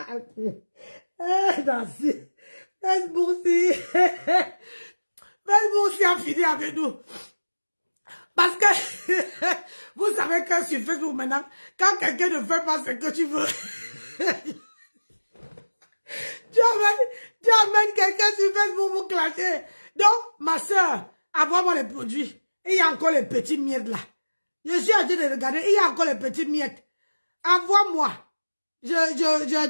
Merci. Facebook aussi a fini avec nous. Parce que, vous savez que sur Facebook maintenant, quand quelqu'un ne fait pas ce que tu veux, tu amènes quelqu'un sur Facebook pour clasher. Donc, ma soeur, envoie-moi les produits. Il y a encore les petits miettes là. Je suis en train de regarder, il y a encore les petits miettes. Envoie-moi. Je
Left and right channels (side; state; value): both; inverted; correlation -1.00